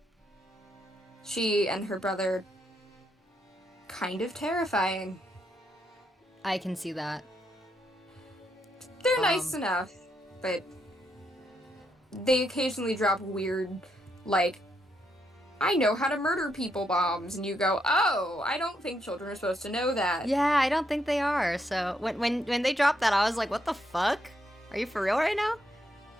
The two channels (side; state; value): both; normal; correlation 0.78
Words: She and her brother, kind of terrifying. I can see that. They're nice enough, but they occasionally drop weird, like, I know how to murder people bombs, and you go, oh, I don't think children are supposed to know that. Yeah, I don't think they are. So when they dropped that, I was like, what the fuck? Are you for real right now?